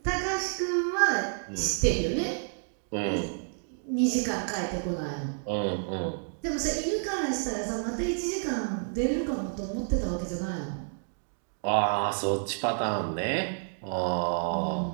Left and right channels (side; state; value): left; silent; digital silence